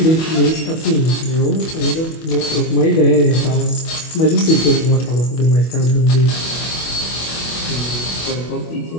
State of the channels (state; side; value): late; right; 25 ms